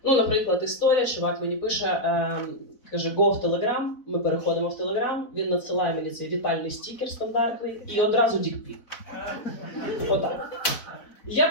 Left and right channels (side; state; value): right; late; 4.0 ms